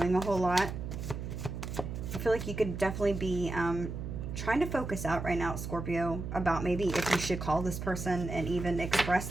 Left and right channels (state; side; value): noise; right; hum, 6 dB below the sound